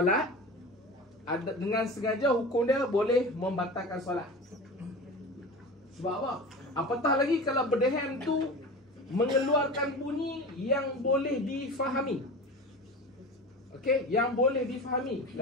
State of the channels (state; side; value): normal; both; correlation 0.32